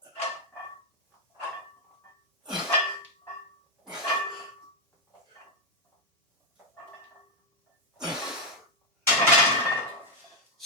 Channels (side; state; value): both; normal; correlation 0.03